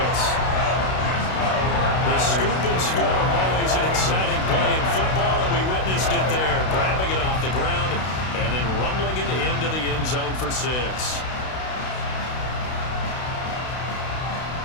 The scoop and score, always an exciting play in football, and we witnessed it there, grabbing it off the ground and then rumbling it into the end zone for 6.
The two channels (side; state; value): right; late; 32 ms